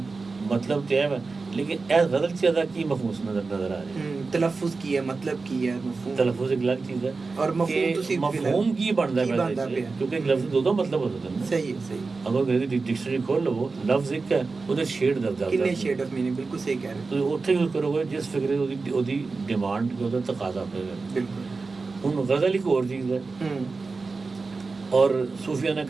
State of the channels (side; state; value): left; quieter; 4.1 dB